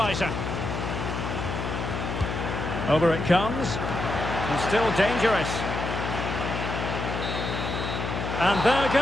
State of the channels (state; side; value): noise; left; hum, 3 dB below the sound